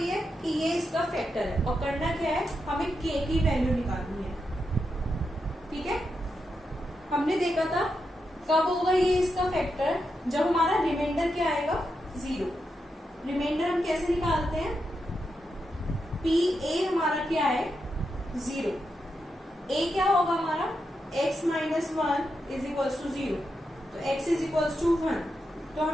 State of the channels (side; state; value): both; normal; correlation 0.85